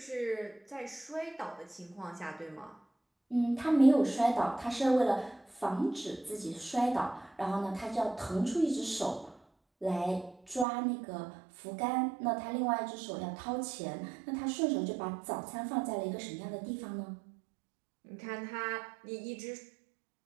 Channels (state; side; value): drops out; left; at 10.7 s